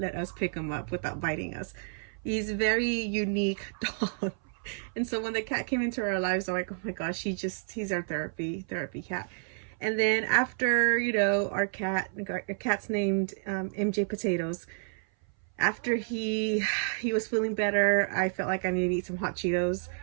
us pick him up without biting us. He's a very unique dog. And so when the cat came into our lives, I'm like, oh my gosh, he's our therapy cat. And then after, our cat's named MJ Potatoes. After he was feeling better, I felt like I needed to eat some hot Cheetos.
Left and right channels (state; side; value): silent; left; 57 dB below the other